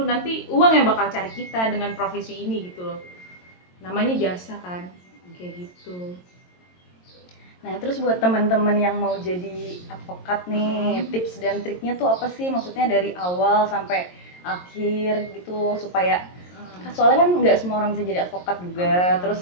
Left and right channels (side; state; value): right; late; 22 ms